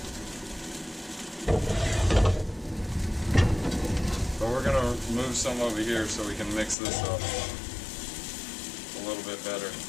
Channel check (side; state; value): right; drops out; at 6.8 s